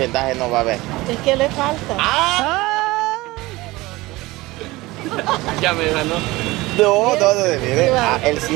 no va a haber. Es que le falta. ¡Ah! Ya me ganó. No, mire. Ah, el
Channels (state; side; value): quieter; left; 20.3 dB